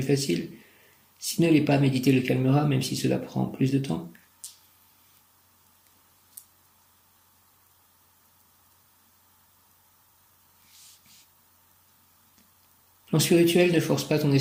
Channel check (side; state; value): both; identical; correlation 1.00